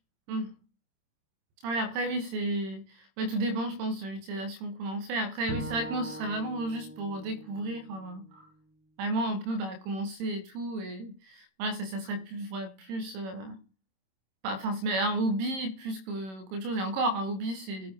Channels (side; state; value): left; late; 26 ms